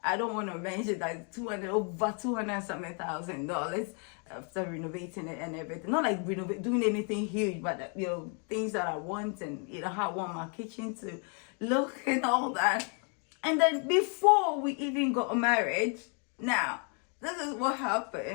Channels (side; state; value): right; quieter; 39.4 dB